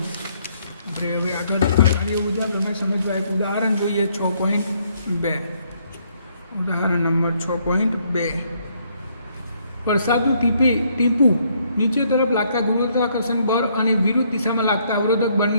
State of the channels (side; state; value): both; inverted; correlation -0.69